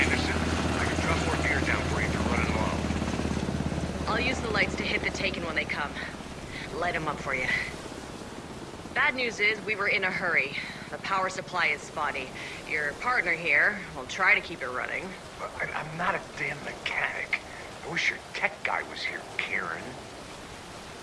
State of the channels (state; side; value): identical; both; correlation 1.00